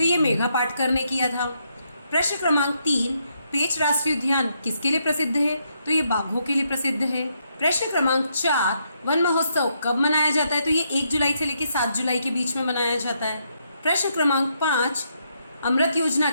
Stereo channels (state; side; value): inverted; both; correlation -0.77